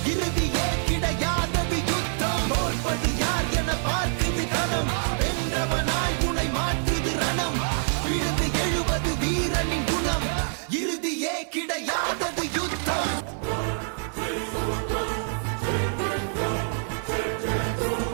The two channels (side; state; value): left; silent; 58 dB below the other